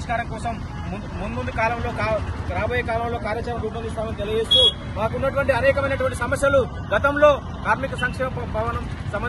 కోసం ముందు కాలంలో రాబోయే కాలంలో కార్యాచరణ రూపొందిస్తామని తెలియజేస్తూ మాకున్నటువంటి అనేకమైనటువంటి సమస్యలు గతంలో కార్మిక సంక్షేమ భవనం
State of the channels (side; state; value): both; identical; correlation 1.00